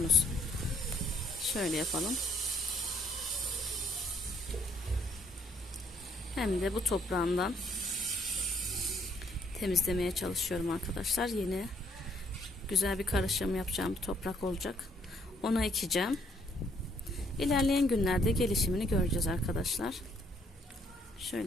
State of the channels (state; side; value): normal; both; correlation 0.68